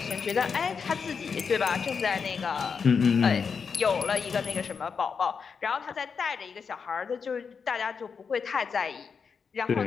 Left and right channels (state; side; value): quieter; right; 5.9 dB